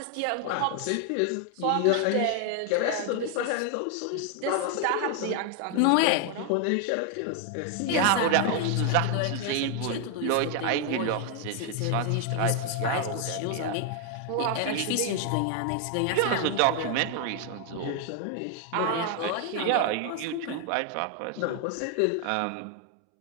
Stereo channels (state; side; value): different; both; correlation 0.00